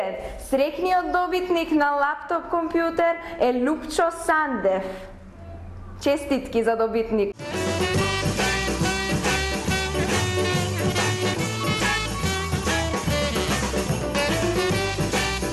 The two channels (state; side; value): identical; both; correlation 1.00